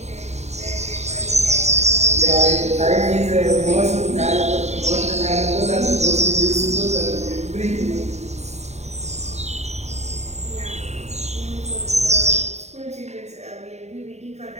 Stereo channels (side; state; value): left; late; 0.32 ms